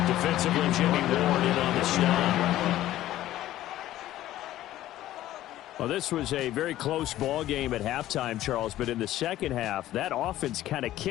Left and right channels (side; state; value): right; quieter; 14.1 dB